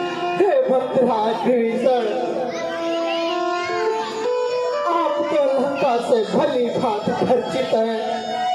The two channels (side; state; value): both; identical; correlation 1.00